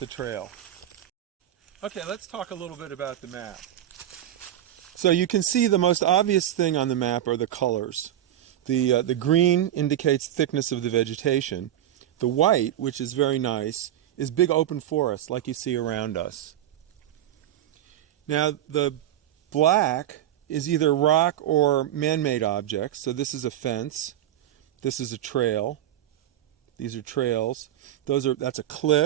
trail. Okay, let's talk a little bit about the map. So you can see the most obvious thing on the map are the colors. The green indicates thickness of the vegetation. The white, which is very nice, is big open forest like you see around us. Now the black is either rock or man-made objects. So this is a fence. This is a trail. These are trails. That's a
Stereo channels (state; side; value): quieter; left; 12.2 dB